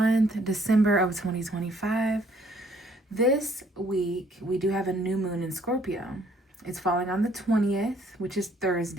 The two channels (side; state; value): both; normal; correlation 0.63